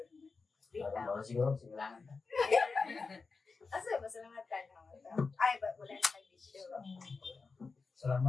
siguro, simulangan. Asa ba salamat ka na? Ay ba wala na kay bisyo.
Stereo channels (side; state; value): right; quieter; 4.5 dB